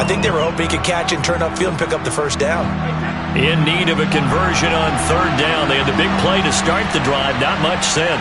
think they were hoping he could catch and turn upfield and pick up the first down. In need of a conversion on third down. They had the big play to start the drive. Not much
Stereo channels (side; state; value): both; identical; correlation 1.00